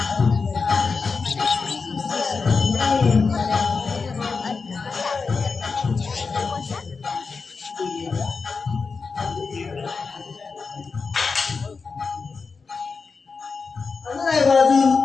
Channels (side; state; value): right; quieter; 4.8 dB